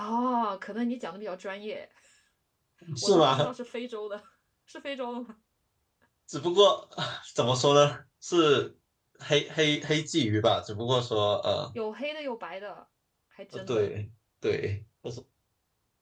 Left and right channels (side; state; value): both; identical; correlation 1.00